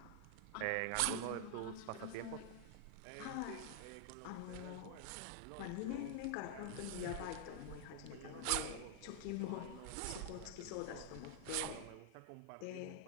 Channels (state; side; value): different; both; correlation 0.00